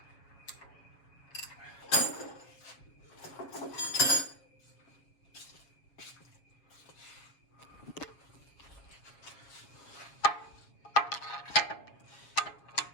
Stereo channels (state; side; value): late; right; 7.2 ms